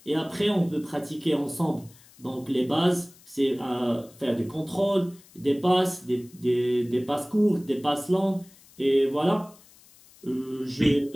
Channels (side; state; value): left; noise; hiss, 26 dB below the sound